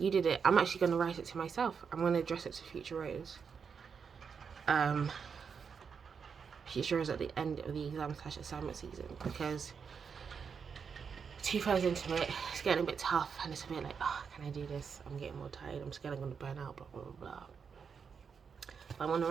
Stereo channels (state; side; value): quieter; left; 6.2 dB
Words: did it. I'm actually going to write it to myself. I'm going to address it to Future Rose. Future Rose at the end of the exam/assignment season, because 2 hours into it, it's getting a bit tough, and it's a bit like, oh, can I do this? I'm getting more tired. I'm scared I'm going to burn out, blah, blah, blah, blah. But I want to